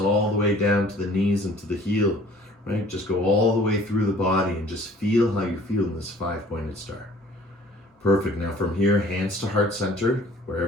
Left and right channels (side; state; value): both; normal; correlation 0.52